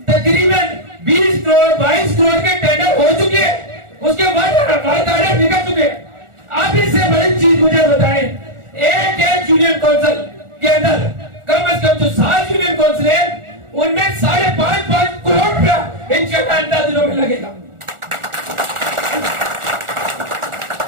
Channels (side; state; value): left; late; 1.4 ms